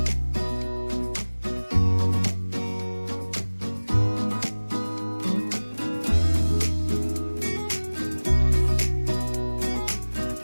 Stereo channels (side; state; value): both; inverted; correlation -1.00